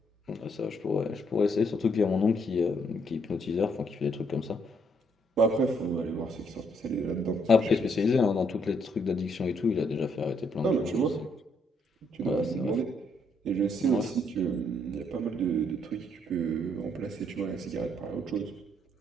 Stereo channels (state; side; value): normal; both; correlation 0.71